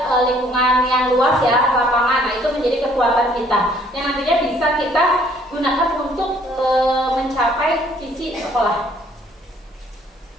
lingkungan yang luas ya, lapangan. Nah, itu menjadi kekuatan kita yang nantinya bisa kita gunakan untuk mencapai visi sekolah.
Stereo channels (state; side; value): normal; both; correlation 0.61